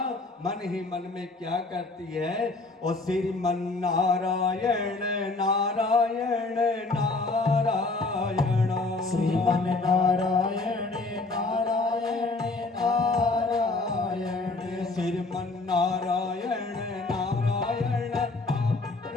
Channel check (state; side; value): quieter; right; 3.4 dB